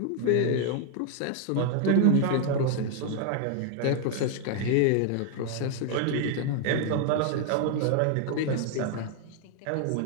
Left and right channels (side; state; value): both; different; correlation 0.00